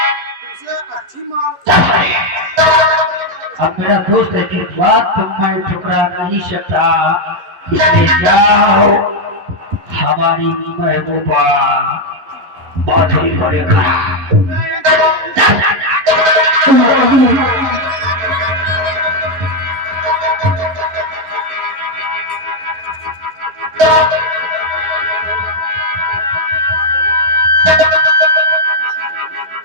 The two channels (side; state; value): left; late; 11 ms